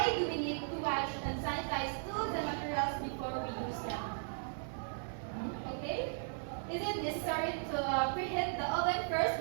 do we need to wash and sanitize tools and materials before we use them? Okay? Is it necessary to preheat the oven first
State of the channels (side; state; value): left; silent; 53 dB below the other